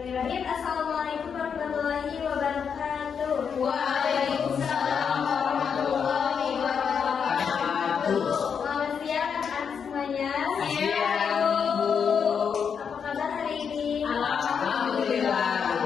Assalamualaikum warahmatullahi wabarakatuh. Waalaikumsalam warahmatullahi wabarakatuh. Selamat siang anak semuanya. Siang, Bu. Apa kabar hari ini? Alhamdulillah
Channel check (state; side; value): quieter; right; 6.8 dB